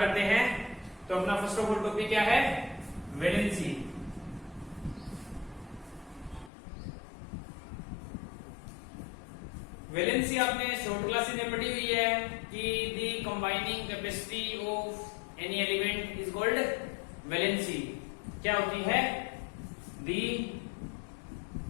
हैं। तो अपना फर्स्ट ऑफ ऑल टॉपिक क्या है? वैलेंसी। वैलेंसी आपने शॉर्ट क्लासेस में पढ़ी हुई है कि the combining capacity of any element is called valency. क्या होती है? The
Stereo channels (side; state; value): right; drops out; at 6.5 s